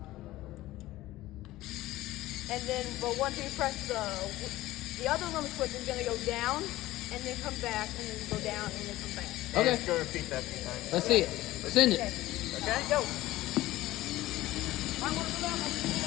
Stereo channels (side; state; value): right; quieter; 16.7 dB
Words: And then, but once we press the other limit switch is gonna go down, and then come back, and then go down, and then come back. Okay. Let's go repeat that a few times. Let's see it. Send it. Okay? Go.